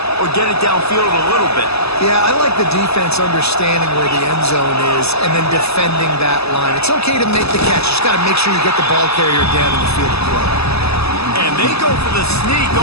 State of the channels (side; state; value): right; late; 0.79 ms